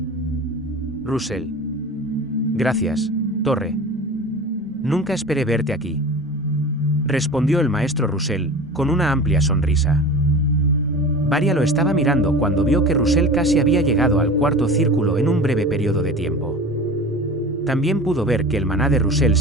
Russell. Gracias, Torre. Nunca esperé verte aquí. Respondió el maestro Russell, con una amplia sonrisa. Varia lo estaba mirando cuando vio que Russell casi había llegado al cuarto círculo en un breve periodo de tiempo. También pudo ver que el maná de Russell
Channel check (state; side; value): normal; both; correlation 0.35